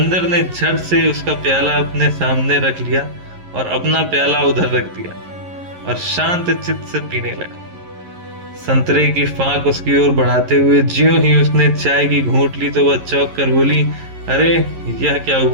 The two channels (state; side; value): late; left; 11 ms